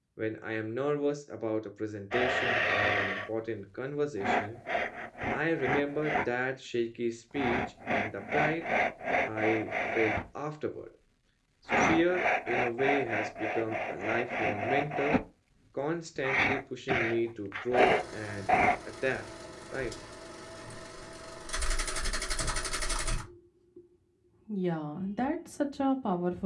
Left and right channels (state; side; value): identical; both; correlation 1.00